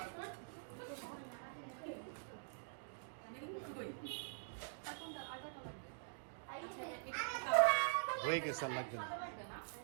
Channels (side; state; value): left; silent; digital silence